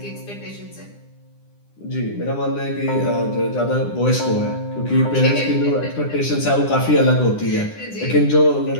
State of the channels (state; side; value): late; right; 9.9 ms